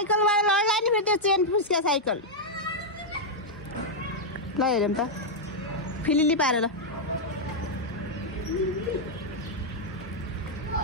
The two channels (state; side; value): normal; both; correlation -0.03